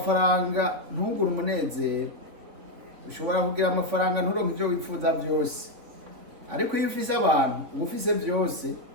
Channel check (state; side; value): late; left; 3.5 ms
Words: ntugure umunezero, ushobora kugira amafaranga nturonke ibyo wifuza byose, ariko iyo ufise abantu uba ufise byose.